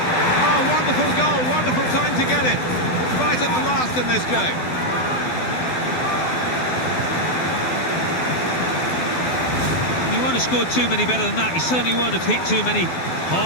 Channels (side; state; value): right; late; 12 ms